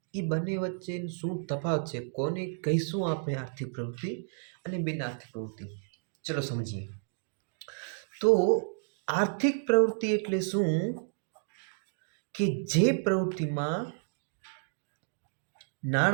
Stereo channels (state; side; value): silent; left; digital silence